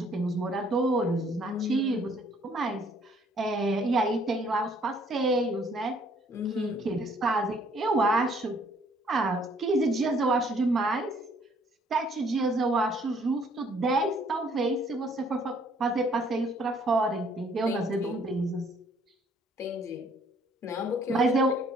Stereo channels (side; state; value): both; normal; correlation 0.62